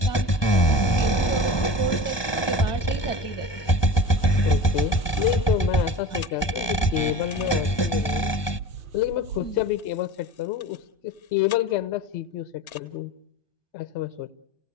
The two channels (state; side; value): late; right; 1.2 ms